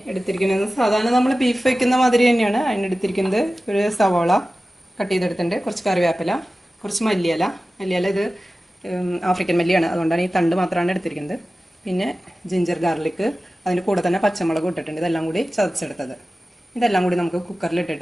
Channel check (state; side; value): normal; both; correlation 0.96